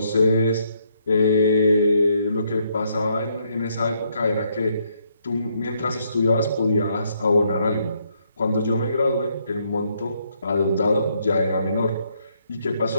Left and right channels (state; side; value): inverted; both; correlation -0.73